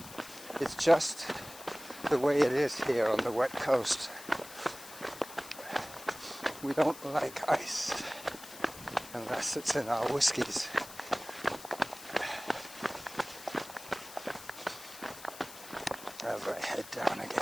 It's just the way it is here on the wet coast. We don't like ice unless it's in our whiskies. As I head down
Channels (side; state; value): left; noise; hiss, 15 dB below the sound